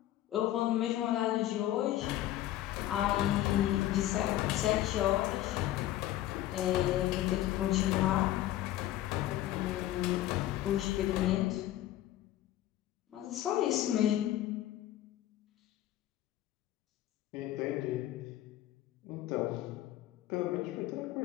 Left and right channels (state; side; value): quieter; right; 14.0 dB